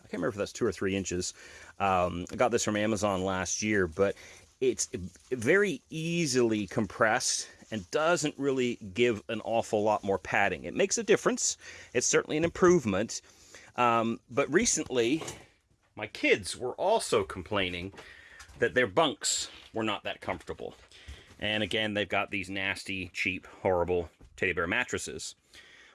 I can't remember if that's 2 or 3 inches. I got this from Amazon last year, but it's very easily compressed and doesn't really give an awful lot more padding. It makes a difference. It's certainly an improvement. But recently, my kids were also complaining that their bunks were not that comfortable. And again, they've got these nasty, cheap, horrible teddy bear mattresses.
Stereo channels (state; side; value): identical; both; correlation 1.00